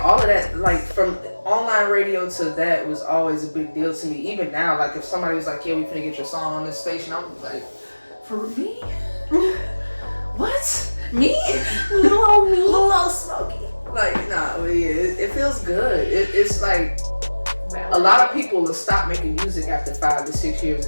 all of that, like from online radio to that was always a big deal to me. Even now, like if somebody was like, "Yeah, we finna get your song on this station," I'm like, "For me? What? Me? Little Smokey?" Like, nah, but yeah, it feels good. It's like a lot of people will stop making music after 5 to 6 years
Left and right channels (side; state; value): both; inverted; correlation -1.00